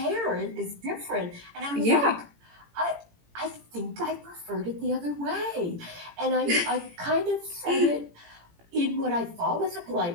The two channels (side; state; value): left; late; 18 ms